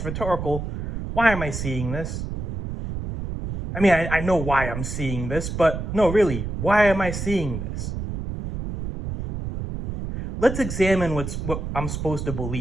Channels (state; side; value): noise; right; rumble, 5 dB below the sound